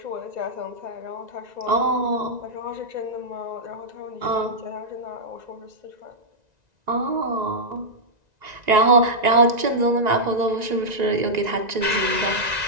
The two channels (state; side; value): late; left; 1.9 ms